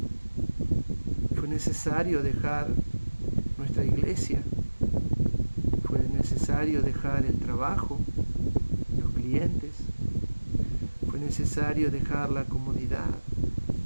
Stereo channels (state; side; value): inverted; both; correlation -1.00